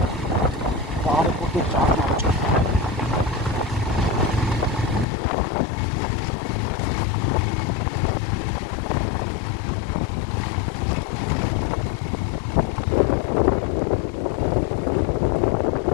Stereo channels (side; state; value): right; drops out; at 5.1 s